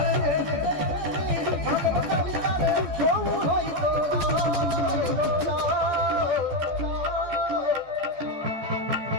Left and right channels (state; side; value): late; left; 14 ms